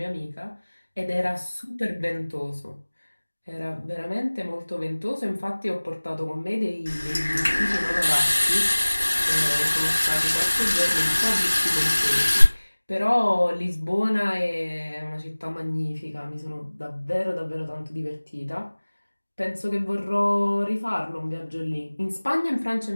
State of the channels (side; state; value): both; inverted; correlation -1.00